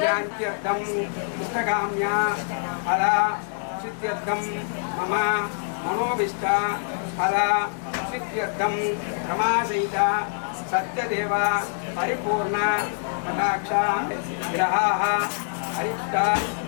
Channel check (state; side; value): silent; right; digital silence